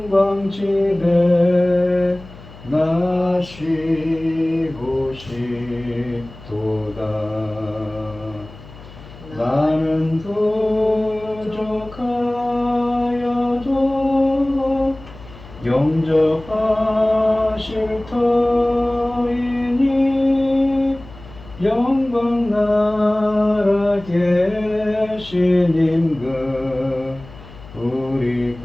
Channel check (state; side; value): noise; left; hum, 18 dB below the sound